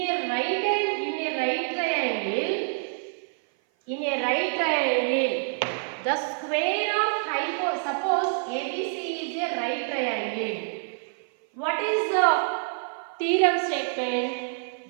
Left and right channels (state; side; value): silent; left; 56 dB below the other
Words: a right triangle, the square of suppose ABC is a right triangle. What is the theorem statement?